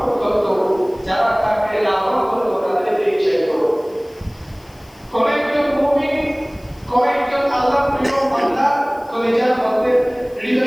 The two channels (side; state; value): left; noise; hiss, 29 dB below the sound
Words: করত, যারা তাকে লালন করত, তাদেরকে চাইবে। কোন একজন মুমিন, কোন একজন আল্লাহর প্রিয় বান্দা কলিজার মধ্যে,